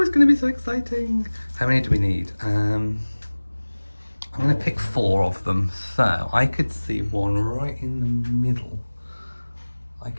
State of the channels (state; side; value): inverted; both; correlation -1.00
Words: going to be so exciting. How many do we need? I'm going to pick 4 of them. So I could see one right in the middle.